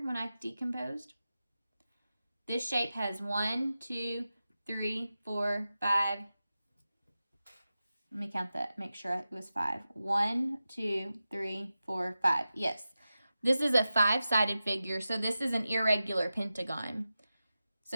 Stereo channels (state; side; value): inverted; both; correlation -0.93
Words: when I decomposed? This shape has 1, 2, 3, 4, 5. Let me count that, make sure it was 5. 1, 2, 3, 4, 5. Yes. This is a 5-sided figure, so this is an irregular pentagon.